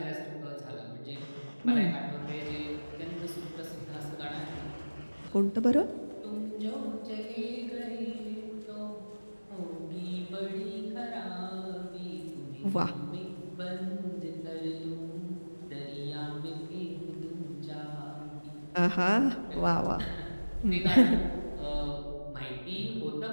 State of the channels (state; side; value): inverted; both; correlation -1.00